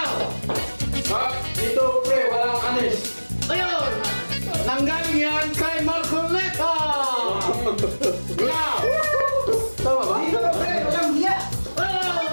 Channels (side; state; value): both; inverted; correlation -1.00